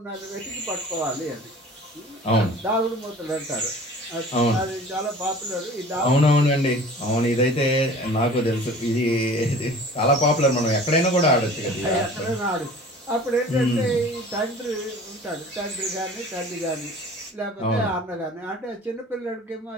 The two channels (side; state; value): both; normal; correlation 0.44